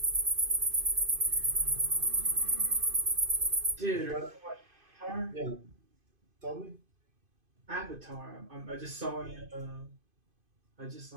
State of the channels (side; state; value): left; late; 2.5 ms